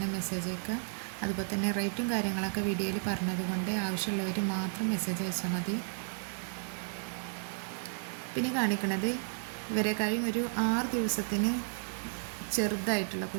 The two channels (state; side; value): silent; left; digital silence